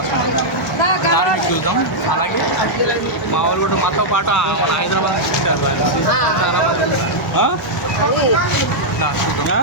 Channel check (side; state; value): both; normal; correlation -0.05